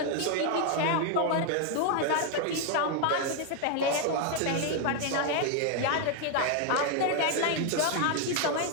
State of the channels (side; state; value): both; different; correlation 0.01